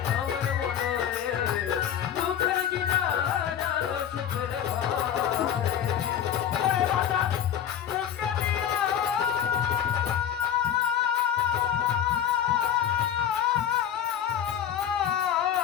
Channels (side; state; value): right; quieter; 9.7 dB